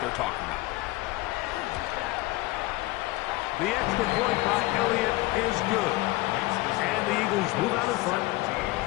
they're talking about. The extra point by Elliott is good. And the Eagles move out in front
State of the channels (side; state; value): right; quieter; 19.5 dB